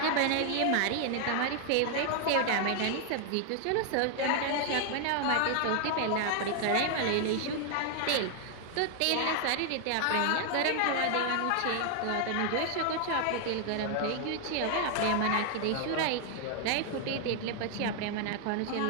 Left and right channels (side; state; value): both; different; correlation 0.00